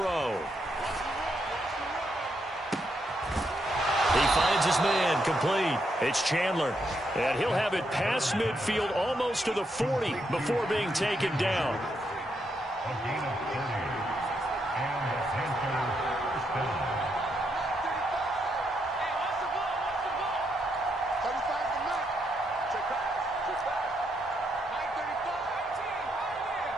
He finds his man, complete. It's Chandler. And he'll have it past midfield almost to the 40 before being taken down.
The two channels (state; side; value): normal; both; correlation 0.79